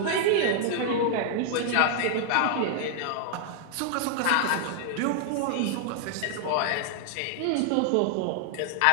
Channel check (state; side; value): different; both; correlation -0.01